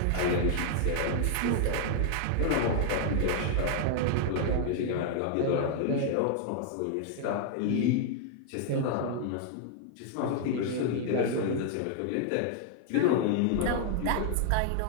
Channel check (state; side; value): different; both; correlation 0.00